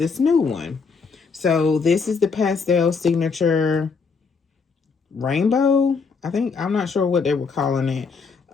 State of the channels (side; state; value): right; quieter; 5.1 dB